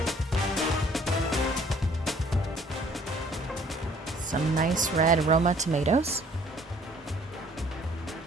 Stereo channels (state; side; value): normal; both; correlation 0.57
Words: some nice red Roma tomatoes,